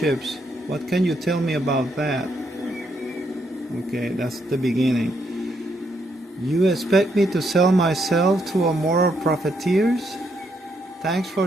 What can you tell me about that? Okay, that's the beginning. You expect me to sell myself to a moral profiteers? Thanks for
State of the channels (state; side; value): normal; both; correlation 0.76